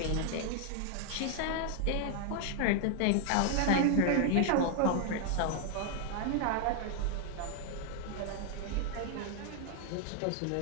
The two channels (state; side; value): different; both; correlation 0.00